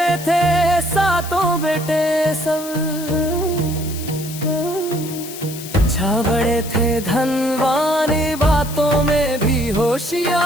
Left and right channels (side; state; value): left; noise; hiss, 12 dB below the sound